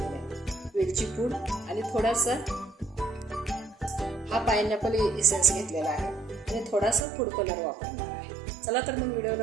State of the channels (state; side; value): drops out; left; at 7.1 s